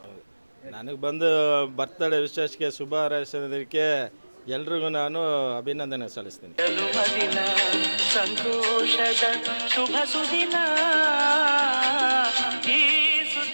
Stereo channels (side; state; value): both; inverted; correlation -1.00